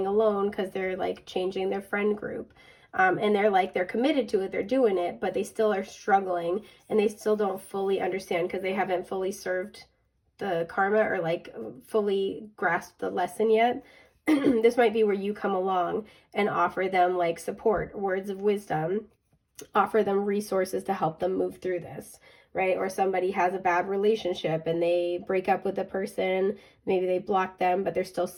alone because they're like changing their friend group. And they're committed to it, they're doing it, but they still are struggling and they still don't fully understand because they haven't fully served the karma or like fully grasped the lesson yet. This might be where you come along and offer them like support, words of wisdom, offer them resources to help them move through this, right? Or somebody has a bad relationship and they break up with the person, maybe they block them, but they're still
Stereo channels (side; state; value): both; identical; correlation 1.00